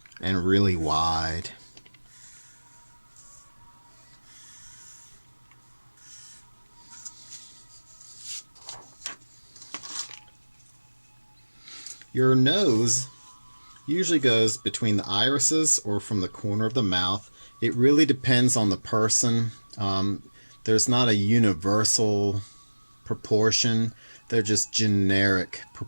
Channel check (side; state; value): both; inverted; correlation -1.00